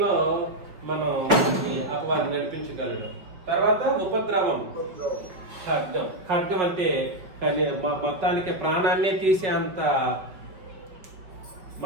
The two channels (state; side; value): late; left; 5.1 ms